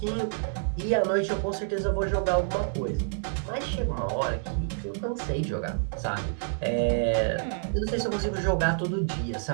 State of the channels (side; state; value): left; silent; digital silence